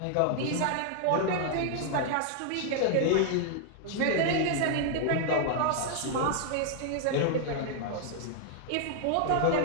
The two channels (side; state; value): both; different; correlation 0.00